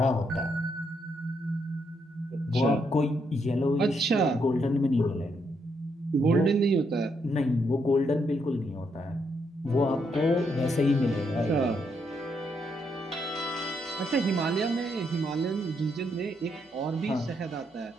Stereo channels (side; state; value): both; normal; correlation 0.77